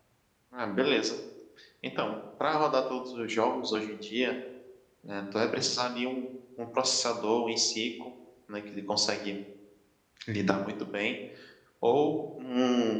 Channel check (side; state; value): both; identical; correlation 1.00